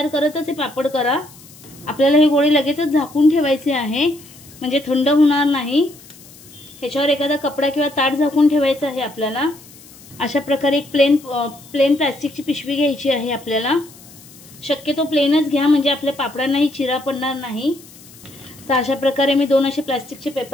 करतच हे पापड करा. आपल्याला हे गोळे लगेचच झाकून ठेवायचे आहे, म्हणजे थंड होणार नाही. ह्याच्यावर एखादा कपडा किंवा ताट झाकून ठेवायचं आहे आपल्याला. अशा प्रकारे एक प्लेन प्लास्टिकची पिशवी घ्यायची आहे आपल्याला. शक्यतो प्लेनच घ्या, म्हणजे आपल्या पापडांनाही चिरा पडणार नाही. तर अशा प्रकारे मी 2 असे प्लास्टिकचे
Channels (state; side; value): noise; left; hiss, 22 dB below the sound